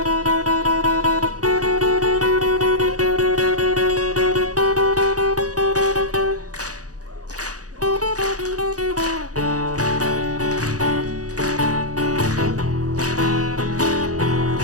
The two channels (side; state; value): left; late; 0.67 ms